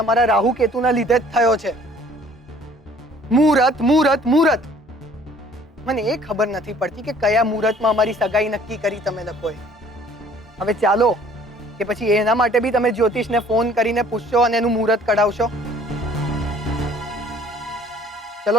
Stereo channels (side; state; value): both; normal; correlation 0.55